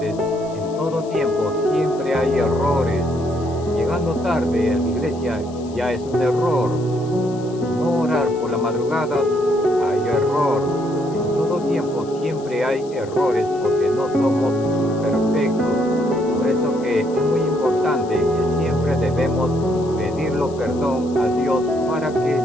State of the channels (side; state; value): left; noise; hiss, 23 dB below the sound